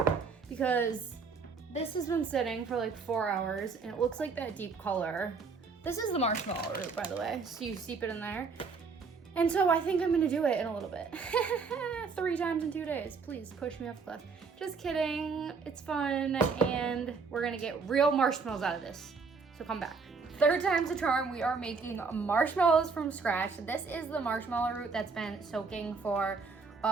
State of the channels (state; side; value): quieter; left; 4.9 dB